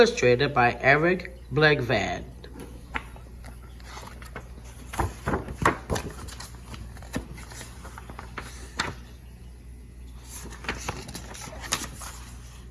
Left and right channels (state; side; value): identical; both; correlation 1.00